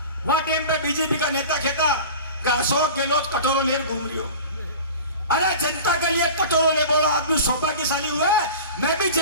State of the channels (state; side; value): inverted; both; correlation -0.36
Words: वह टाइम पे बीजेपी का नेता कहता कि अशोक गहलोत कटोरो ले घूम रही हो। अरे जनता के लिए कटोरो ले बोलो आदमी सौभाग्यशाली हुआ है। मैं भी